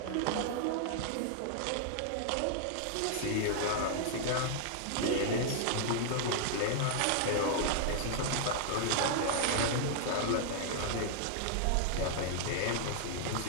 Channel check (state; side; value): different; both; correlation -0.01